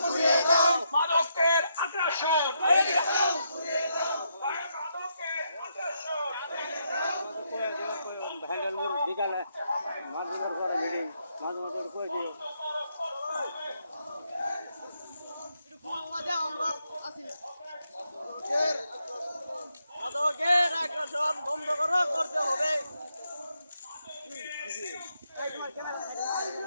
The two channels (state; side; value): inverted; both; correlation -0.79